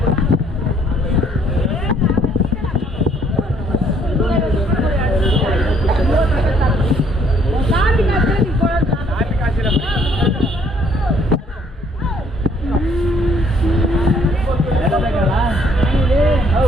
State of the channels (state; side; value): normal; both; correlation 0.65